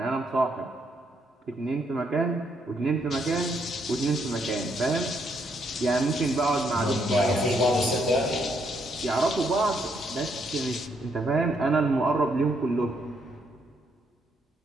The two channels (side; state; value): both; normal; correlation 0.74